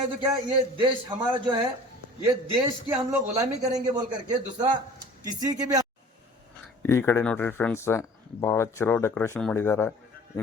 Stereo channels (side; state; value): both; normal; correlation 0.46